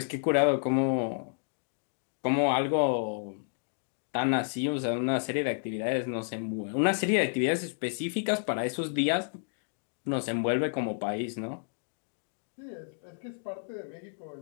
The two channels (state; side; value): silent; right; digital silence